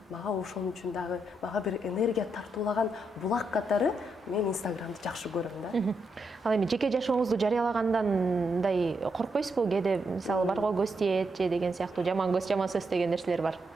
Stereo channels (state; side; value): normal; both; correlation 0.81